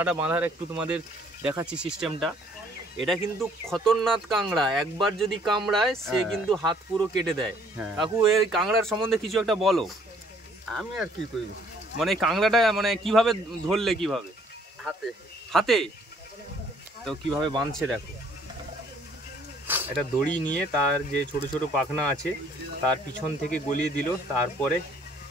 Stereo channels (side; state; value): both; normal; correlation 0.61